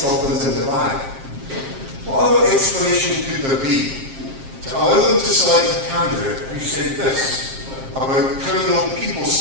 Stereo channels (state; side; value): late; left; 7.5 ms